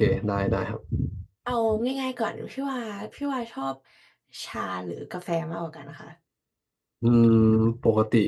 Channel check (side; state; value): both; identical; correlation 1.00